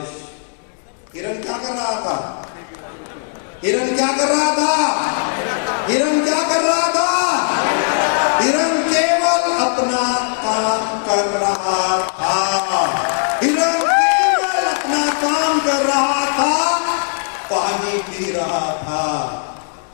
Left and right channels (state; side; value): silent; right; digital silence